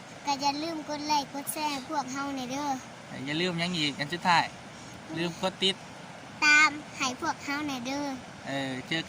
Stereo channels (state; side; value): identical; both; correlation 1.00